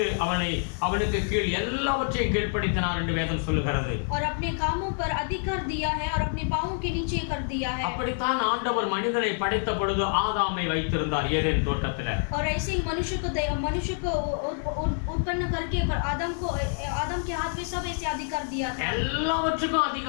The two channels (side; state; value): right; silent; 60 dB below the other